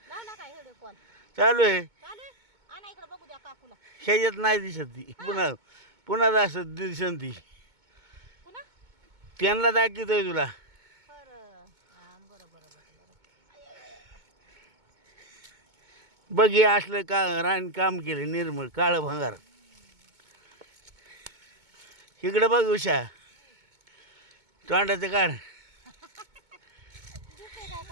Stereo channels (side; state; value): left; late; 2.2 ms